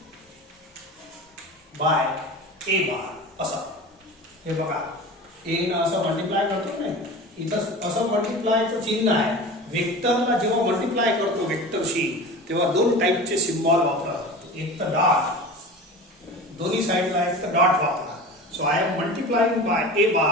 बाय ए बार असं. हे बघा ए न असं मल्टिप्लाय करतो नाही, इथं असं मल्टिप्लायचं चिन्ह आहे. वेक्टरला जेव्हा मल्टिप्लाय करतो वेक्टरशी तेव्हा दोन टाईपचे सिम्बॉल वापरा. एक तर डॉट, दोन्ही साइडला एक तर डॉट वापरा. So I am multiplying by a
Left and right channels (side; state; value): both; normal; correlation 0.34